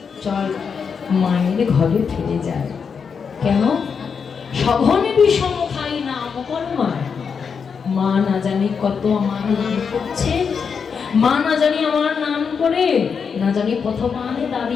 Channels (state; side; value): quieter; right; 6.2 dB